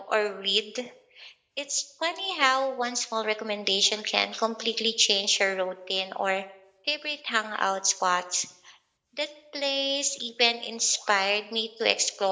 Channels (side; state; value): both; identical; correlation 1.00